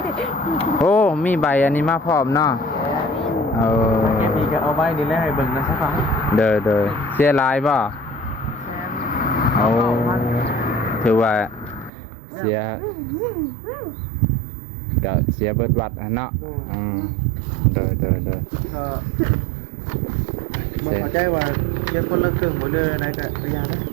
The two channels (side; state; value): left; drops out; at 11.9 s